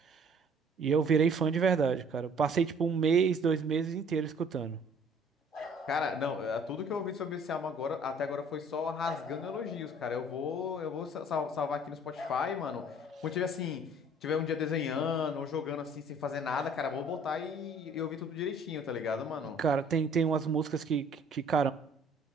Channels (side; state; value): both; normal; correlation 0.55